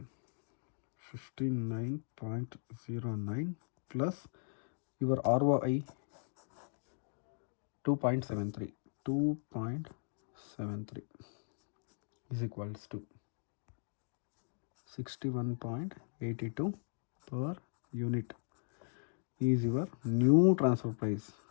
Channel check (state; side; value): silent; right; digital silence